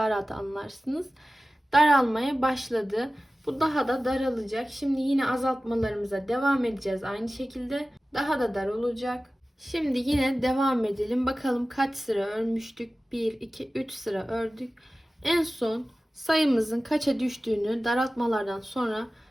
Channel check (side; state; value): both; normal; correlation 0.96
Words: rahat anlarsınız. Daralmaya başladı. Bu daha da daralacak. Şimdi yine azaltmalarımıza devam edeceğiz aynı şekilde. Daha da dar olacak. Şimdi yine devam edelim. Bakalım kaç sıra örmüştük? 1, 2, 3 sıra ördük. En son sayımızın kaça düştüğünü daraltmalardan sonra